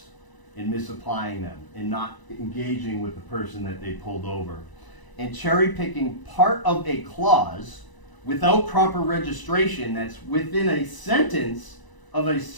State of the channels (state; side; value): late; right; 1.0 ms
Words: and misapplying them and not engaging with the person that they pulled over. And cherry picking part of a clause without proper registration that's within a sentence of a